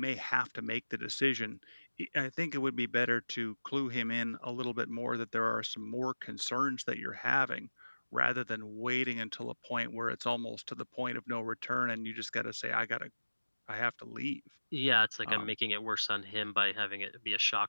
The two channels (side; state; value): both; inverted; correlation -1.00